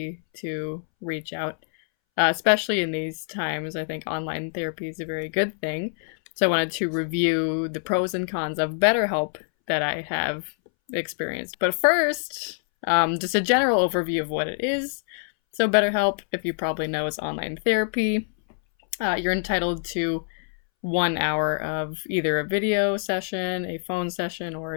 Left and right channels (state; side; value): silent; right; 62 dB below the other